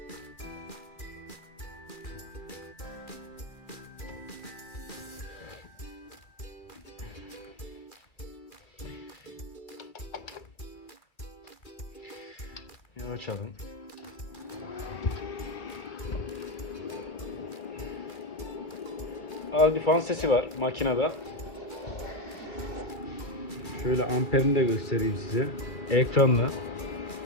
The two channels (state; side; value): late; right; 2.4 ms